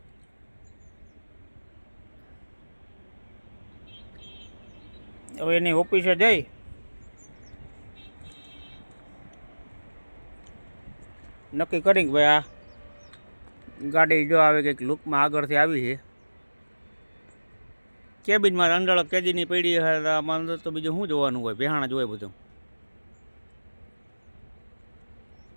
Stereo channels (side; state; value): both; inverted; correlation -1.00